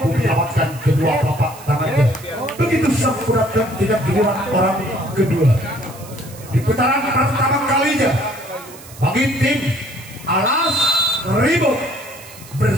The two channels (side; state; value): right; noise; hiss, 19 dB below the sound